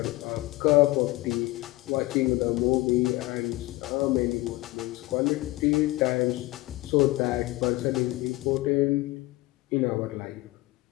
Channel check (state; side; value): quieter; right; 20.1 dB